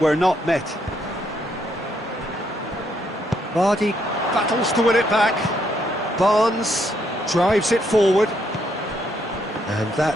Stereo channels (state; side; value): normal; both; correlation 0.74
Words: not met. Vardy battles to win it back. Barnes drives it forward. And